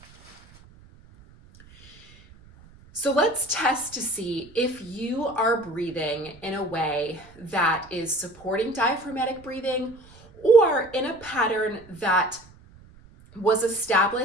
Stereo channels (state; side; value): noise; right; rumble, 24 dB below the sound